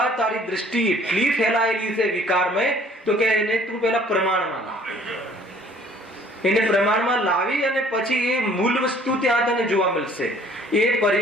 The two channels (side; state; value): both; normal; correlation 0.56